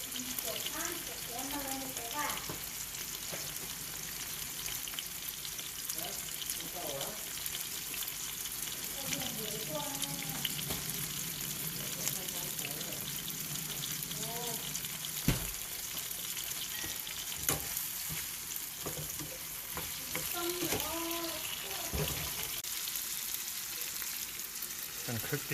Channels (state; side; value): identical; both; correlation 1.00